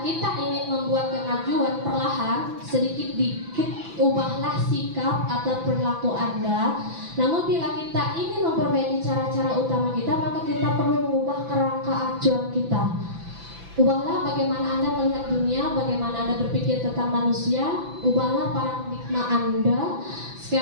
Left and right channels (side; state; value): left; late; 6.0 ms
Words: kita ingin membuat kemajuan perlahan, sedikit-dikit ubahlah sikap atau perilaku Anda. Namun bila kita ingin memperbaiki cara-cara utama kita, maka kita perlu mengubah kerangka acuan kita. Ubahlah bagaimana Anda melihat dunia, bagaimana Anda berpikir tentang manusia. Ubahlah paradigma Anda,